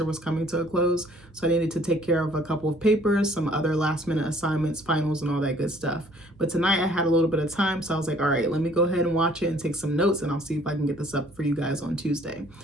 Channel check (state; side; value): normal; both; correlation 0.58